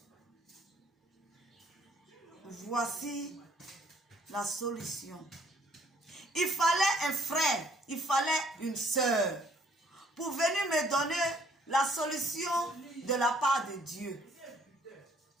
voici la solution. Il fallait un frère, il fallait une sœur pour venir me donner la solution de la part de Dieu.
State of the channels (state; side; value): normal; both; correlation 0.63